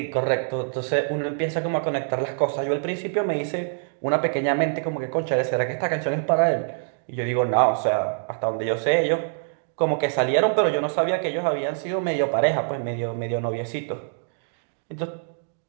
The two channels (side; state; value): left; silent; digital silence